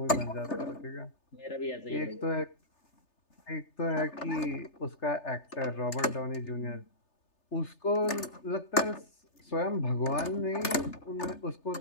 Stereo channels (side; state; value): right; late; 3.3 ms